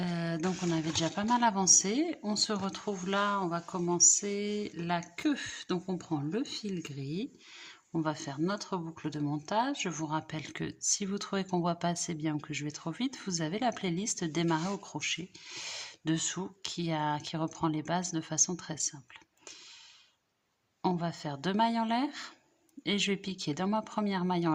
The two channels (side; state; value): both; identical; correlation 1.00